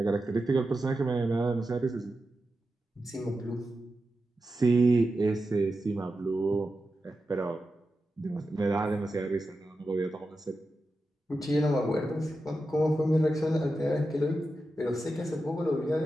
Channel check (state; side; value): normal; both; correlation 0.90